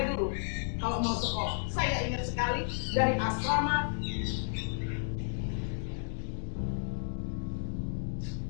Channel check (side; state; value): right; silent; digital silence